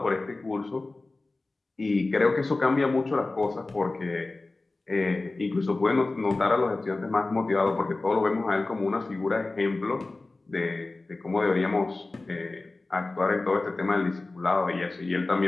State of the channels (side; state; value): right; quieter; 3.2 dB